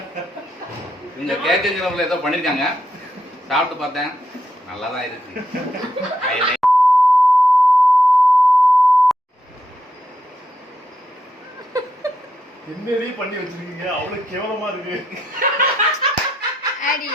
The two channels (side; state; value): both; normal; correlation 0.80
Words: இவங்க கேச்சேஜில் ஏதோ பண்ணியிருக்காங்க, சாப்பிட்டு பார்த்தேன், நல்லா தான் இருக்கு. என்னடி பண்ணி வச்சிருக்கீங்க? அவ்வளவு கேவலமா இருக்கு. அடி